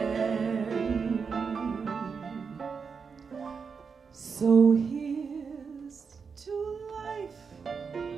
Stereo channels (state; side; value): quieter; left; 5.7 dB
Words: So here's to life